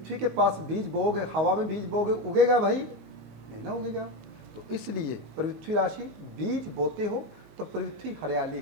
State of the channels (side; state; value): left; late; 21 ms